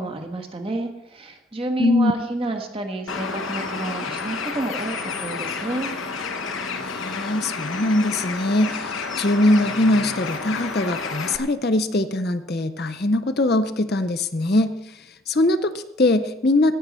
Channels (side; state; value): both; normal; correlation 0.61